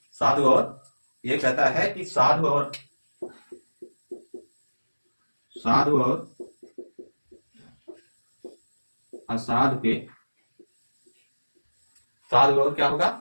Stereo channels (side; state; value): both; inverted; correlation -1.00